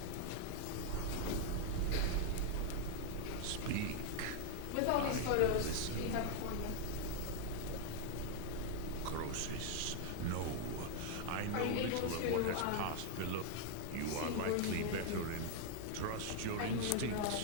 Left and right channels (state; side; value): different; both; correlation 0.00